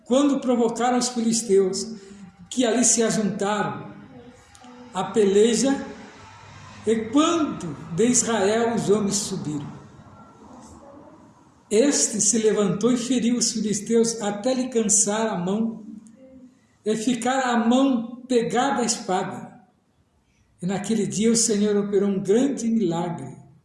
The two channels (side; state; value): both; identical; correlation 1.00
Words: quando provocaram os filisteus, que ali se ajuntaram à peleja, e quando de Israel os homens subiram. Este se levantou e feriu os filisteus até lhe cansar a mão, e ficar a mão pegada à espada. E naquele dia o Senhor operou um grande milagre